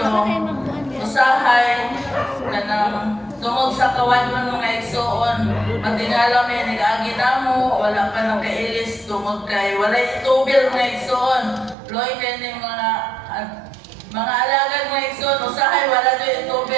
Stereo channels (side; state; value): left; drops out; at 11.8 s